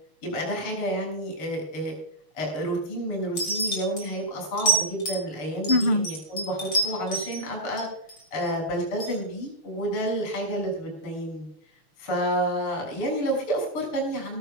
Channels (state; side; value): late; right; 6.3 ms